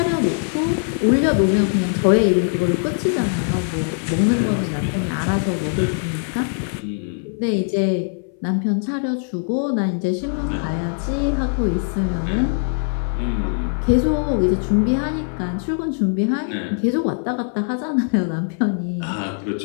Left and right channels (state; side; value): silent; right; 61 dB below the other